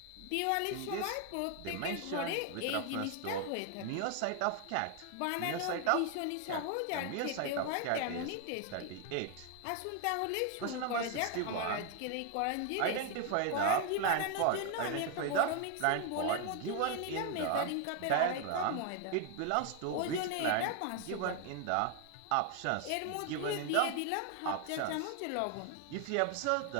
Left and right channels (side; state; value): both; different; correlation 0.01